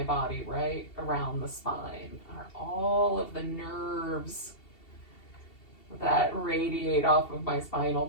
body, right around the spine, are all of the nerves that radiate off of my spinal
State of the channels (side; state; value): right; late; 2.7 ms